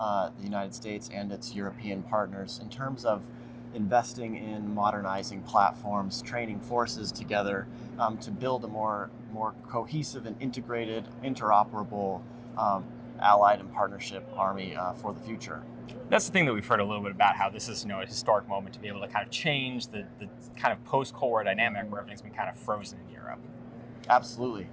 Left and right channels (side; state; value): both; identical; correlation 1.00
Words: United States and its European partners in terms of investing in modernizing platforms, training forces together to build a more cohesive and integrated, interoperable allied and partnership army for the future. That's the thing that we've heard a little bit about, how this is a historic moment to be able to kind of change the kind of post-Cold War dynamic where everything's been kind of frozen in Europe. Absolutely.